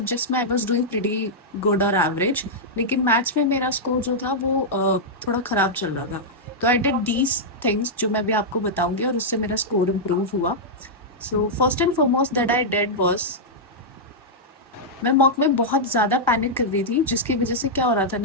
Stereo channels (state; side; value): normal; both; correlation -0.08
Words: में I was doing pretty good और एवरेज, लेकिन मैथ्स में मेरा स्कोर जो था वो थोड़ा ख़राब चल रहा था। तो आई डिड दीज थिंग्स जो मैं भी आपको बताऊंगी और उससे मेरा स्कोर इम्प्रूव हुआ। So first and foremost that I did was मैं मॉक में बहुत ज़्यादा पैनिक कर रही थी, जिसकी वजह से क्या हो रहा था